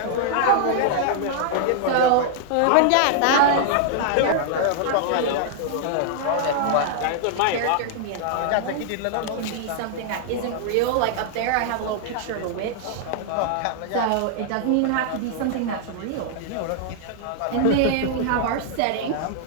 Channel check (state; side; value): different; both; correlation -0.01